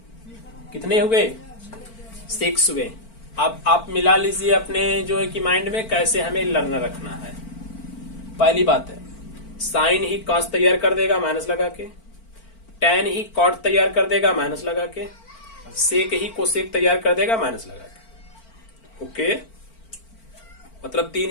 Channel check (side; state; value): right; late; 4.4 ms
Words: कितने हुए? 6 हुए। अब आप मिला लीजिए अपने जो है कि माइंड में कैसे हमें लर्न रखना है। पहली बात है, साइन ही कॉस तैयार कर देगा माइनस लगा के, टेन ही कॉट तैयार कर देगा माइनस लगा के, सेक ही कोसेक तैयार कर देगा माइनस लगा के। ओके, मतलब 3